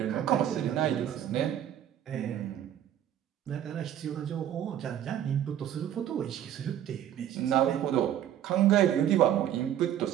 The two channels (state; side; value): quieter; left; 10.9 dB